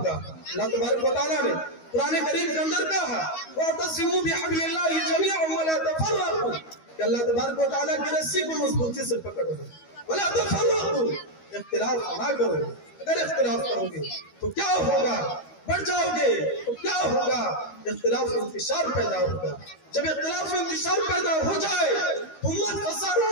अल्लाह तबारक व तआला ने कुरान करीम के अंदर कहा वअतसिमू बिहब्लिल्लाहि जमीअन वला तफर्रकू, कि अल्लाह तबारक व तआला की रस्सी को मजबूती से पकड़ो, वला तफर्रकू, इख्तिलाफ ना करो। अगर इख्तिलाफ करोगे तो क्या होगा? बढ़ जाओगे तो क्या होगा? इख्तिलाफ इंतशार पैदा होगा। जब इख्तिलाफ इंतशार पैदा हो जाए तो उम्मत खसारा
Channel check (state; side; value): late; right; 13 ms